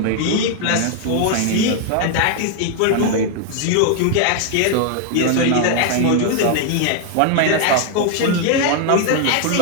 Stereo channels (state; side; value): different; both; correlation 0.00